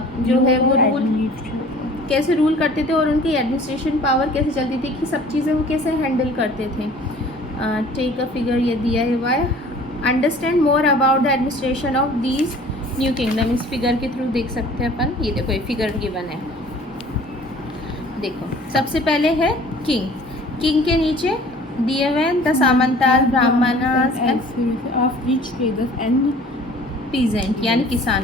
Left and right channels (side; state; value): both; normal; correlation 0.49